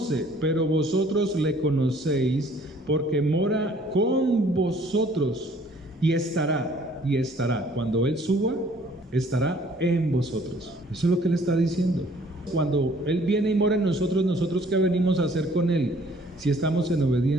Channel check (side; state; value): both; normal; correlation 0.58